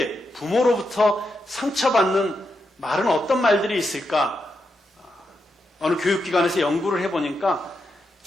부모로부터 상처받는 말은 어떤 말들이 있을까? 어느 교육기관에서 연구를 해보니까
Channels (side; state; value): both; normal; correlation 0.85